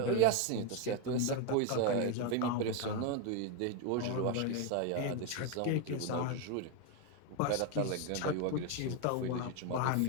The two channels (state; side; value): different; both; correlation 0.02